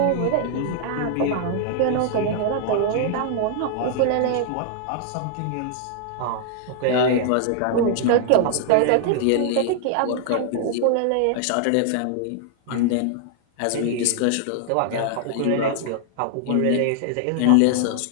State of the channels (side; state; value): both; different; correlation 0.00